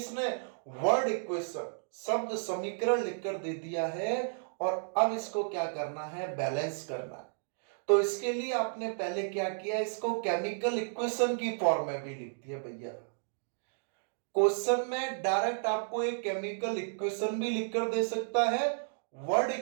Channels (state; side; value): silent; left; digital silence